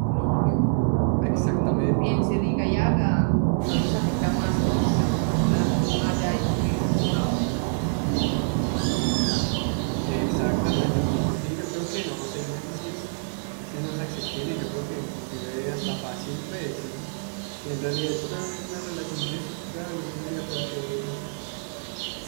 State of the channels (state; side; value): silent; left; digital silence